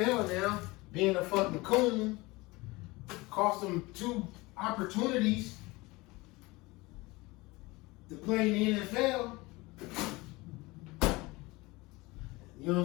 now. Being a fucking coon. Cost him 2 opportunities to play in the NFL. You know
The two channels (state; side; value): quieter; right; 22.5 dB